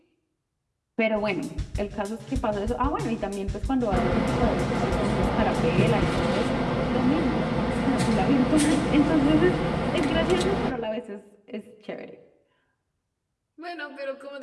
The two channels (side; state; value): both; identical; correlation 1.00